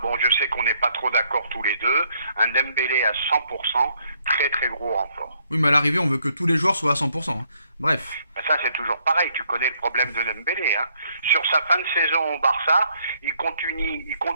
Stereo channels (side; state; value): both; inverted; correlation -0.70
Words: bon, je sais qu'on n'est pas trop d'accord tous les deux. Un Dembélé à 100%, très très gros renfort. Oui, mais à l'arrivée, on veut que tous les joueurs soient à 100%. Hein. Bref. Ça, c'est toujours pareil. Tu connais le problème de Dembélé. Hein. Sur sa fin de saison au Barça, il